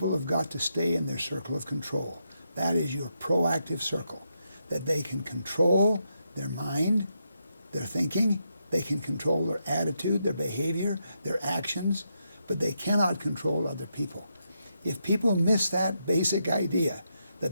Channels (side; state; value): both; inverted; correlation -0.82